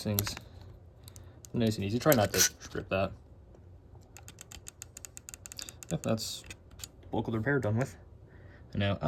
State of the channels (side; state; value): both; identical; correlation 1.00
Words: things nice and easy. Try not to strip that. Yep, that's bulk of the repair done with. And now